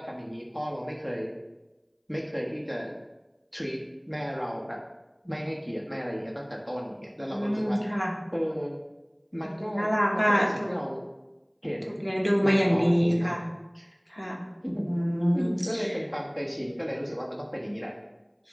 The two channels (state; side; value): identical; both; correlation 1.00